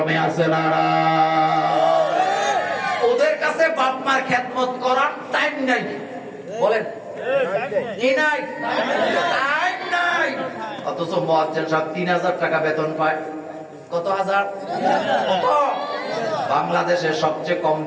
আছে না? ওদের কাছে বাপ মার খেদমত করার টাইম নাই। বলেন কি নাই? টাইম নাই। অথচ মুয়াজ্জিন সাহেব 3000 টাকা বেতন পায়। কত হাজার? কত? বাংলাদেশে সবচেয়ে কম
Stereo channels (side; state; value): both; identical; correlation 1.00